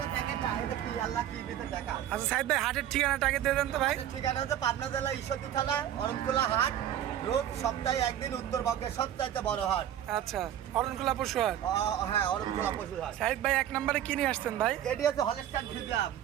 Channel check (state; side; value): quieter; left; 11.0 dB